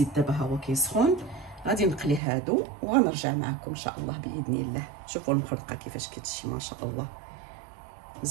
دابا ها هو كيسخن. غادي نقلي هادو وغنرجع معكم ان شاء الله باذن الله. شوفوا المخرقه كيفاش كتجي ما شاء الله،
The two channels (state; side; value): drops out; left; at 2.2 s